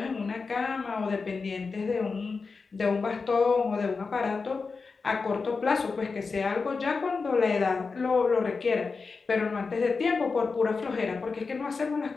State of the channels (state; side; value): quieter; right; 4.6 dB